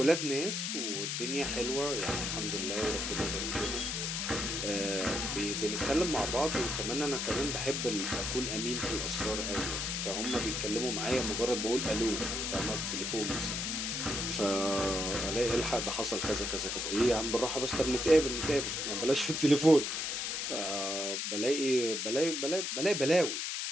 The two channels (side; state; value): left; noise; hiss, 2 dB below the sound